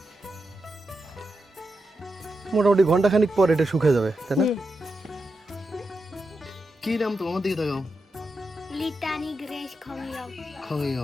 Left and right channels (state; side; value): normal; both; correlation 0.87